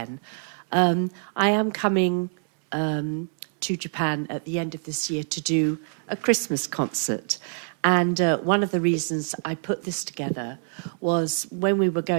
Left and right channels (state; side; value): silent; left; 60 dB below the other